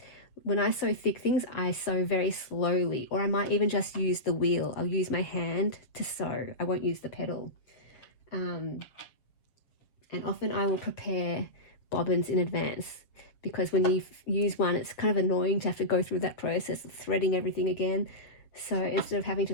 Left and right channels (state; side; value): late; right; 7.4 ms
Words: When I sew thick things, I sew very slowly, or I might even just use the wheel. I'll use my hand to sew. I won't use the pedal. And often I will prepare bobbins in advance, because when you use one, it's kind of annoying to have to go through that process of threading everything again. So instead of having